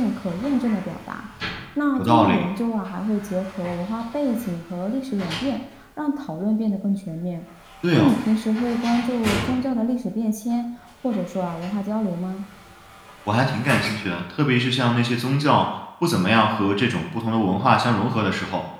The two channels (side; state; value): both; identical; correlation 1.00